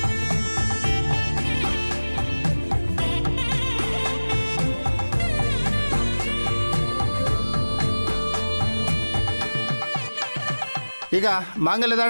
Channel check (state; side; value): inverted; both; correlation -1.00